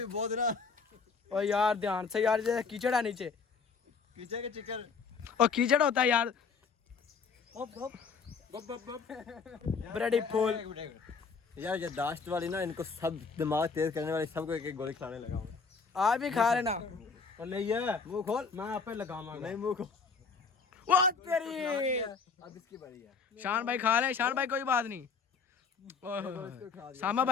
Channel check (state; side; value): quieter; right; 5.2 dB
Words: बहुत ना। और यार ध्यान से यार, जैसे कीचड़ है नीचे, कीचड़ के चिकन और कीचड़ होता है यार। ब्रेडी फूल यार, ये दाश्त वाली ना, इनको सब दिमाग तेज करने वाली सबको एक एक गोली खिलाने लगा हूँ। आप भी खा लेना। और नहीं है, मुंह खोल, मैं आप पे लगाऊंगा। नहीं, मुंह खोल। वो तेरी। अब इसकी बारी है। शान भाई खा ले, शान भाई कोई बात नहीं। सामा